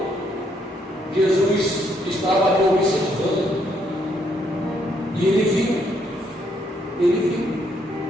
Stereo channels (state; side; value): normal; both; correlation 0.72